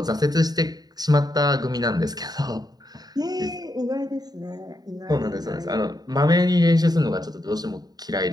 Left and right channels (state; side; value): late; left; 0.19 ms